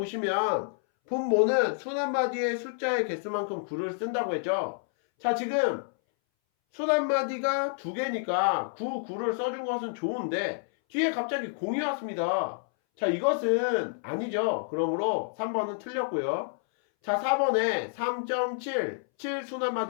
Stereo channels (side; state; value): right; silent; 59 dB below the other